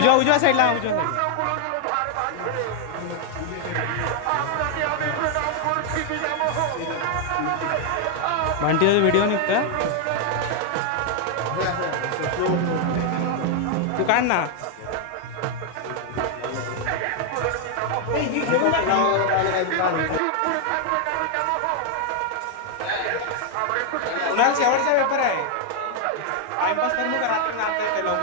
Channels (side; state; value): both; different; correlation 0.00